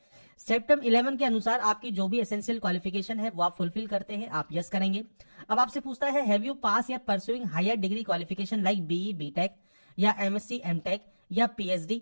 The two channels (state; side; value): inverted; both; correlation -1.00